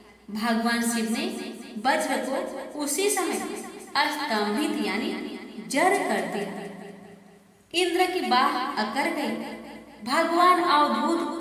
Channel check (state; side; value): identical; both; correlation 1.00